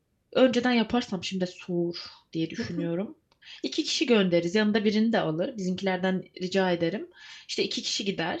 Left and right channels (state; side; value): identical; both; correlation 1.00